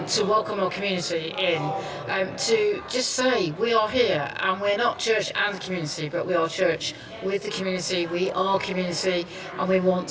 welcome our community in, to just say we are here, and we're not church and community, but we are church with the community. We are community, and we want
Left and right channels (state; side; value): identical; both; correlation 1.00